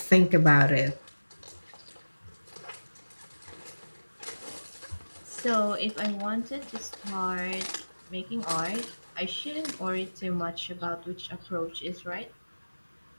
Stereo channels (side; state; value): both; inverted; correlation -1.00